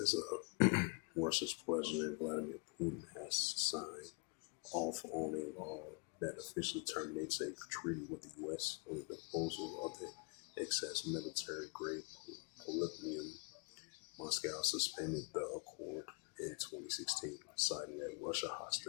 Russia's President Vladimir Putin has signed off on a law that officially terminates a treaty with the U.S. on the disposal of the excess military-grade polonium. Moscow suspended the accord in 2016, citing that Russia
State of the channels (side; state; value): right; quieter; 33.9 dB